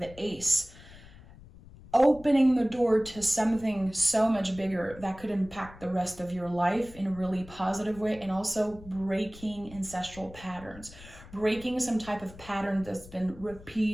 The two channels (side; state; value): left; noise; rumble, 19 dB below the sound